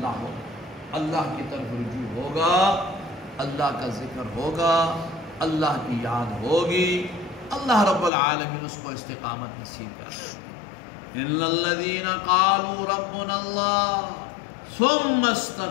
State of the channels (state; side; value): drops out; right; at 8.1 s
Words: ہو، اللہ کی طرف رجوع ہوگا، اللہ کا ذکر ہوگا، اللہ کی یاد ہوگی، اللہ رب العالمین اس کو استقامت نصیب کرے۔ ان الذین قالوا ربنا اللہ ثم